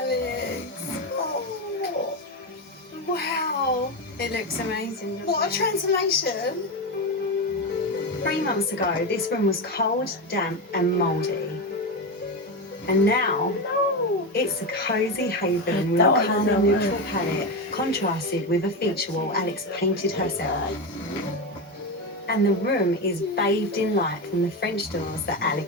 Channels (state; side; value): normal; both; correlation 0.15